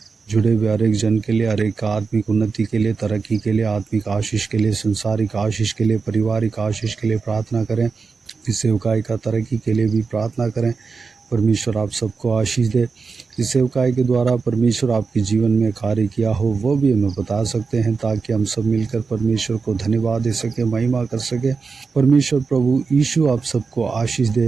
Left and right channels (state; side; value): quieter; left; 4.8 dB